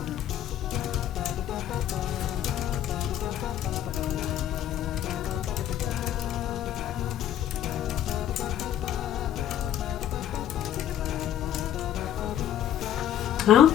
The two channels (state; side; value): quieter; right; 11.1 dB